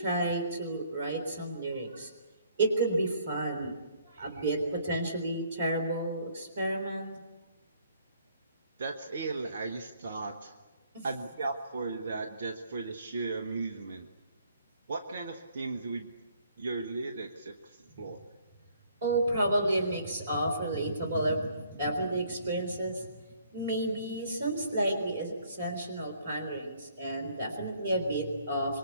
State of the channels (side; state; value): both; inverted; correlation -0.63